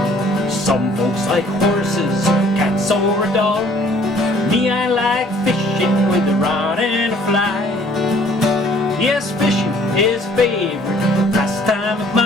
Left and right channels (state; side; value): normal; both; correlation 0.57